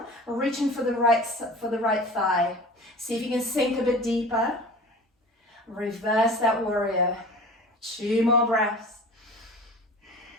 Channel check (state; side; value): normal; both; correlation 0.39